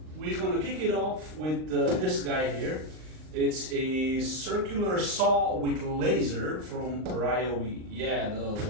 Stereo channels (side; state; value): left; late; 39 ms